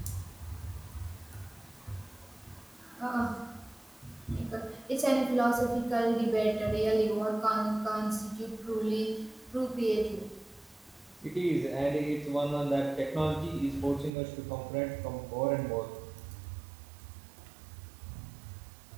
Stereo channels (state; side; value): drops out; left; at 14.1 s